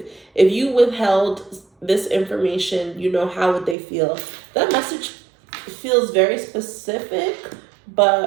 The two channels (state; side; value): drops out; left; at 3.8 s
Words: If you withheld this information, how would they feel? That message feels very specific,